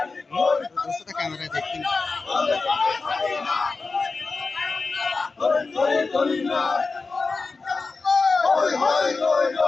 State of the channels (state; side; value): quieter; right; 4.1 dB